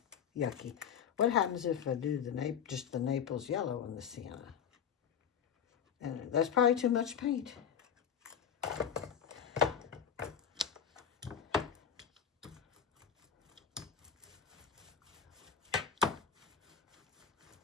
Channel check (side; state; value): right; quieter; 8.0 dB